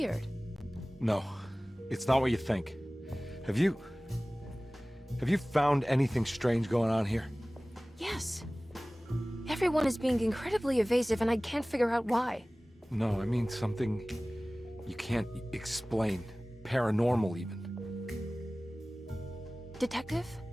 No, it's not what you think. Have you found anything strange going on here? Yes. Everyone is being incredibly evasive and I can't figure out why. No, I mean something you can't explain. Paranormal, even. Detective,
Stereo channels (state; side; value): normal; both; correlation 0.98